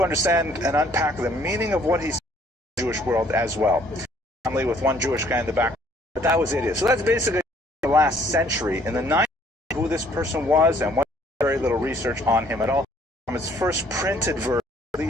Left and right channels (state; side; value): normal; both; correlation 0.61